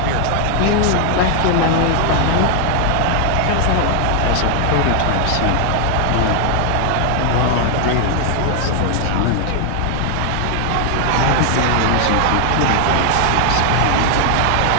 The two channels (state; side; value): different; both; correlation 0.00